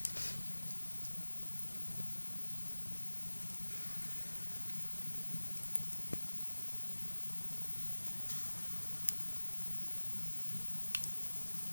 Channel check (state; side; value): inverted; both; correlation -1.00